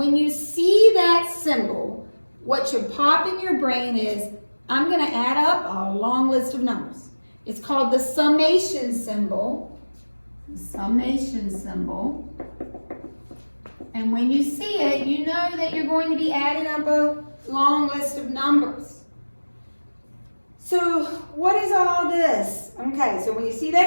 you see that symbol, what should pop in your brain is, I'm going to add up a long list of numbers. It's called the summation symbol. The summation symbol. And when you see it, you know that you're going to be adding up a long list of numbers. So what is all this? Okay, so when you see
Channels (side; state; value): both; inverted; correlation -1.00